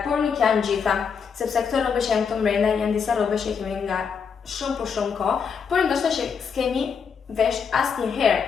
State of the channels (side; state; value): right; quieter; 6.3 dB